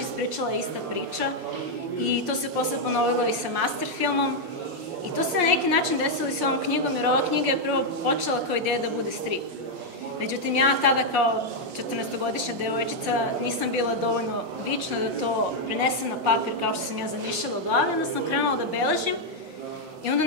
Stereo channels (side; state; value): left; late; 5.6 ms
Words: ispričala ista priča i to se posle ponovilo i sa master filmom. I to se na neki način desilo i sa ovom knjigom, jer ova knjiga je prvo počela kao ideja da bude strip. Međutim, ja tada kao 14-godišnja devojčica, nisam bila dovoljno vična da to prenesem na papir kao što sam ja zamišljala u glavi, onda sam krenula da beležim i onda